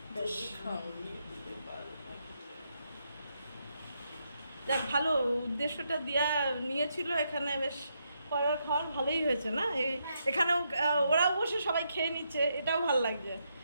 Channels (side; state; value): both; inverted; correlation -0.79